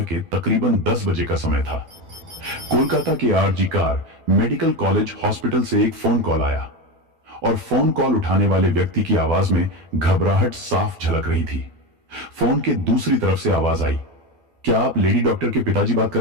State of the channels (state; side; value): late; left; 12 ms